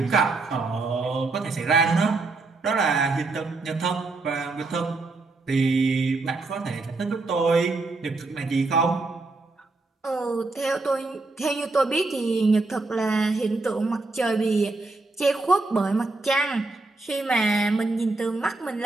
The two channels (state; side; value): quieter; left; 3.4 dB